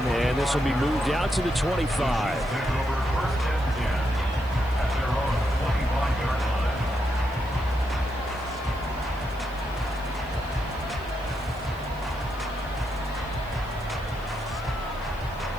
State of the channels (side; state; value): left; noise; hiss, 25 dB below the sound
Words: and this will be moved out to the 25.